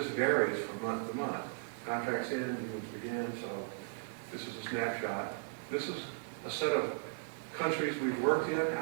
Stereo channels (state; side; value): quieter; left; 36.2 dB